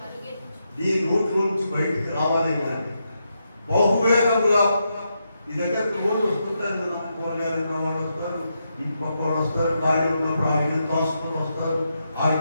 నీ నోట్లోంచి బయటికి రావాలి కానీ బహువేగముగా. ఈ దగ్గరకు రోజు వస్తుంటారు కదా, కూరగాయలు వాళ్ళు వస్తారు, ఇంటి పక్క వాళ్ళు వస్తారు, ఖాళీ ఉన్నప్పుడు ఆడికి తోసుకొని వస్తారు.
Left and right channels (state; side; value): inverted; both; correlation -0.83